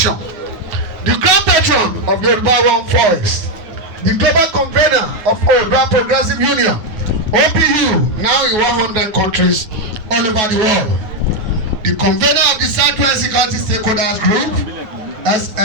the grand patron of Yoruba One Voice, the global convener of Oòduà Progressive Union, OPU, now in 100 countries all over the world, the convener of the Southwest Security Stakeholders Group,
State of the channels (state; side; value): late; left; 9.6 ms